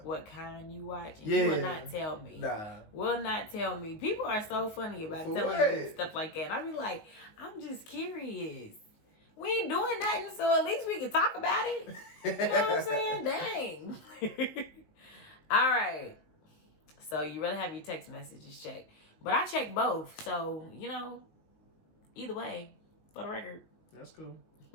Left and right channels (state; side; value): late; right; 19 ms